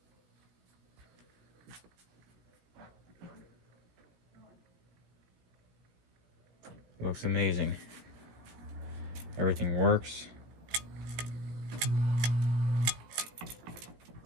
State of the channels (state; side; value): late; left; 17 ms